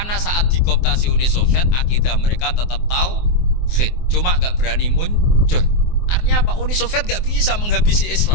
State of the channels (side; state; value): right; late; 24 ms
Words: saat dikooptasi Uni Soviet, akidah mereka tetap tauhid, cuma gak berani muncul. Artinya apa? Uni Soviet gak bisa menghabisi